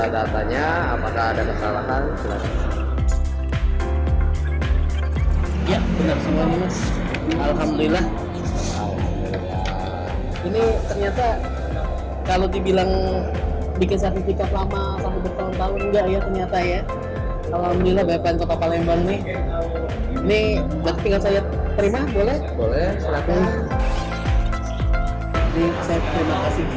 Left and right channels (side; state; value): both; identical; correlation 1.00